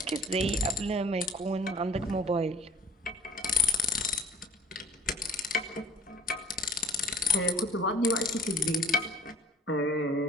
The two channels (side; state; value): both; normal; correlation 0.51